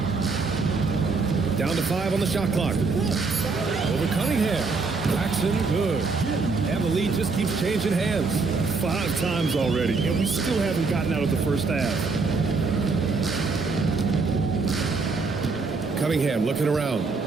Down to 5 on the shot clock. Over Cunningham. Paxson, good. And the lead just keeps changing hands. 5 times already, and we still haven't gotten out of the first half. Cunningham looking around.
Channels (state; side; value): quieter; left; 4.2 dB